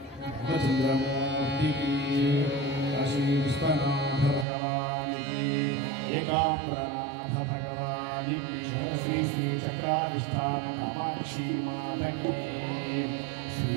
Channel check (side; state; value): left; drops out; at 4.5 s